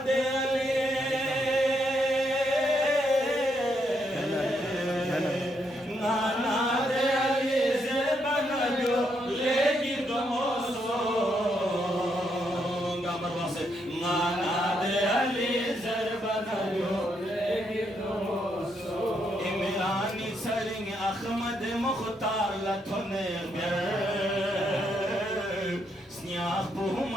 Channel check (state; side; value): normal; both; correlation 0.77